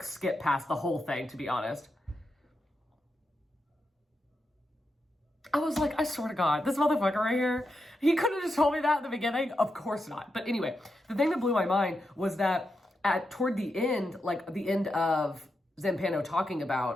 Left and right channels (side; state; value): both; normal; correlation 0.86